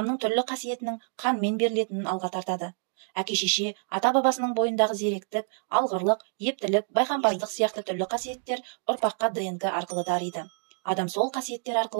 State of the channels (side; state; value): left; silent; digital silence